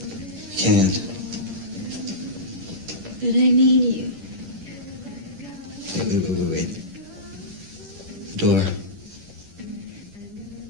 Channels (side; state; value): left; late; 10 ms